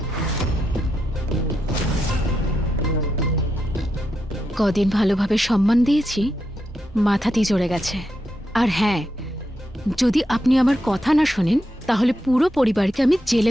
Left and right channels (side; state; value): both; normal; correlation 0.84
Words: কদিন ভালোভাবে সম্মান দিয়েছি, মাথাতেই চড়ে গেছে। আর হ্যাঁ, যদি আপনি আমার কথা না শোনেন তাহলে পুরো পরিবারকে আমি